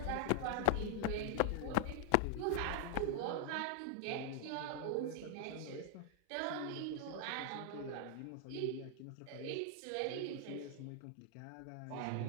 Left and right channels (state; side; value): different; both; correlation 0.00